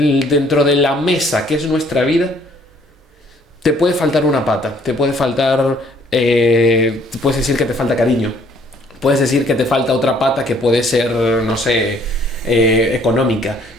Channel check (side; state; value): both; normal; correlation 0.61